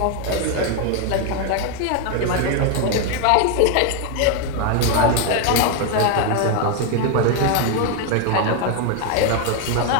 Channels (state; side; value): different; both; correlation 0.01